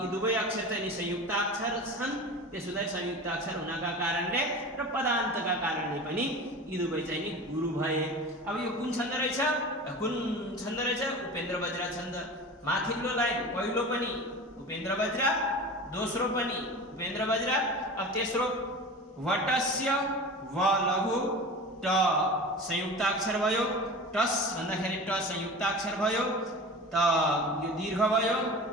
दुवै अक्षर चाहिँ संयुक्ताक्षर छन्, त्यसोले संयुक्ताक्षर हुनका कारणले र पदान्तका कारणले पनि यी दुवै चाहिँ नि गुरु भए। अब यो कुन छन्द रहेछ? उपेन्द्र वज्र छन्द। माथिल्लो लाइन पहिलो पनि उपेन्द्र वज्र, दोस्रो पनि उपेन्द्र वज्र। अब तेस्रो वटस्य व लघु ट संयुक्ताक्षर भयो। टस भन्दाखेरि ट संयुक्ताक्षर भयो, त यो दीर्घ भयो।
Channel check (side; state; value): both; normal; correlation 0.34